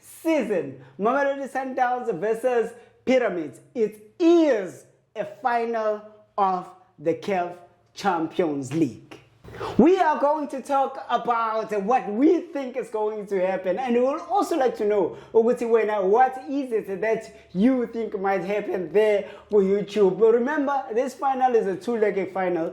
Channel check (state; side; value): identical; both; correlation 1.00